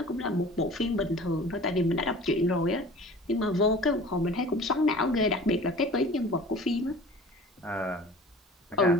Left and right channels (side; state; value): both; normal; correlation 0.43